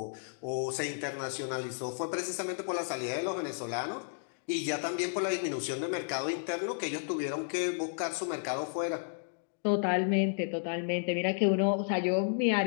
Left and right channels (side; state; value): right; silent; digital silence